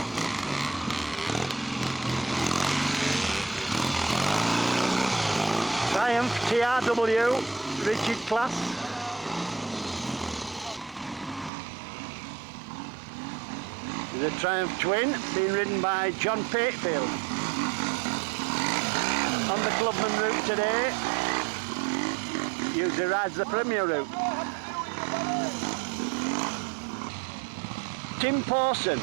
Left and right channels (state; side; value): drops out; left; at 11.5 s